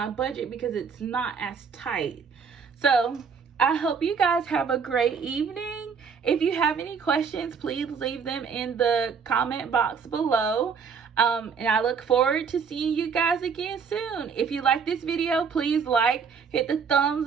budget because it's not as tight. So I hope you guys have a great evening. If you have any questions, please leave them in the comment box below. And I look forward to seeing you guys again soon. If you like this video, please like, hit the thumbs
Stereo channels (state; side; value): quieter; left; 6.0 dB